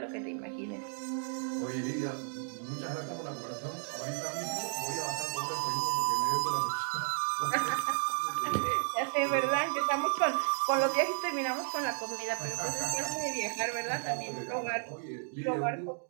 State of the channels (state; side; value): silent; left; 56 dB below the other